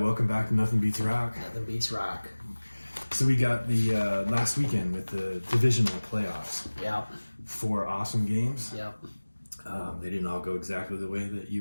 welcome back to Nothing Beats Rock. Nothing beats rock. So we got the last weekend with the divisional playoffs. Yep. 4 awesome games. Yep. They didn't all go exactly the way that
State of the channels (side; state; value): both; inverted; correlation -1.00